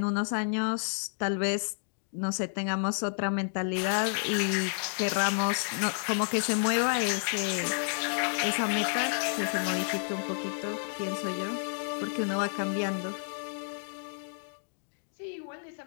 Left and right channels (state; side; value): silent; right; digital silence